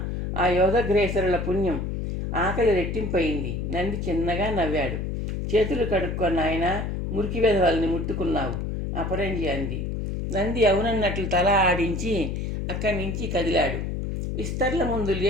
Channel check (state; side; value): noise; left; hum, 3 dB below the sound